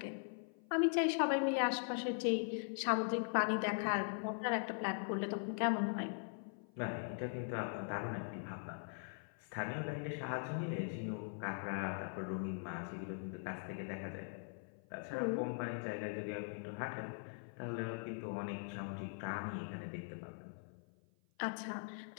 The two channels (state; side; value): silent; right; 50 dB below the other